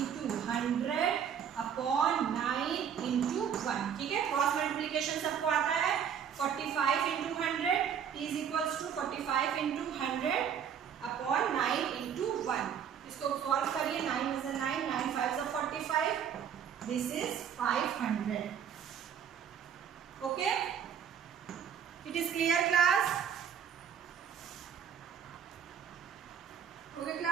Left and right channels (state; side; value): quieter; left; 8.2 dB